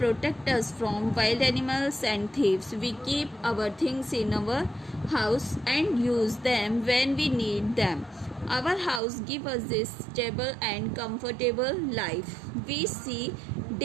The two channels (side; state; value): left; drops out; at 9.0 s